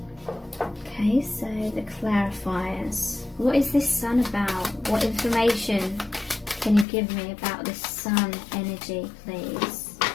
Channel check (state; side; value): drops out; right; at 6.9 s